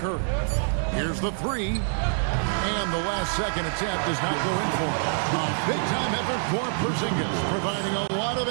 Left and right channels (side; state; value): left; silent; digital silence